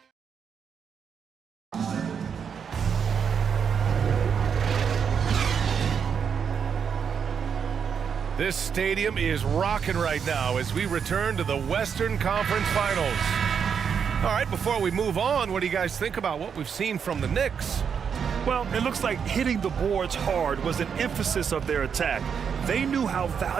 This stadium is rocking right now as we return to the Western Conference Finals. All right, before we move on, what do you guys think about what we've seen from the Knicks? Well, it looks like hitting the boards hard was an emphasis of their attack. They knew how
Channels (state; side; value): quieter; left; 7.0 dB